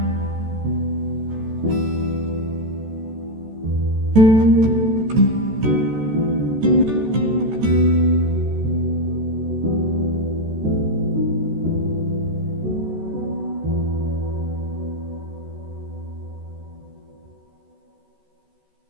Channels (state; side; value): late; left; 14 ms